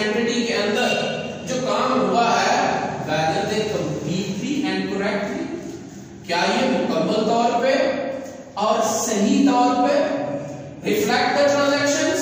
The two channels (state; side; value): identical; both; correlation 1.00